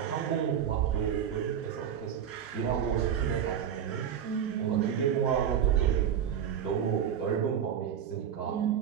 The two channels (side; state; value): left; quieter; 8.9 dB